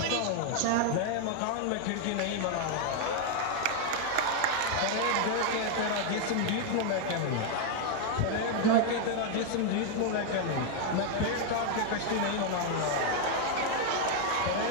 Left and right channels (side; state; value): both; different; correlation 0.00